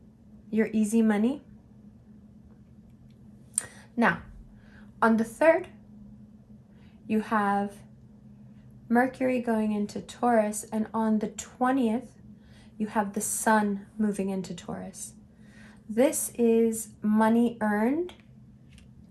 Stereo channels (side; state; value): both; identical; correlation 1.00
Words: your easy money. Now, on the 3rd, you have Mercury going into Taurus, and on the 20th, you have the Sun moving into Taurus. This is money earned